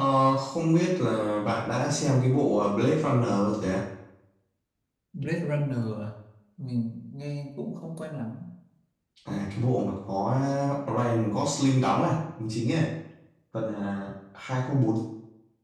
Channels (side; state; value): both; identical; correlation 1.00